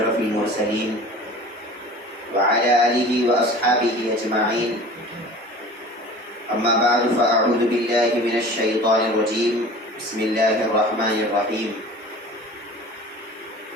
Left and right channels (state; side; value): normal; both; correlation 0.41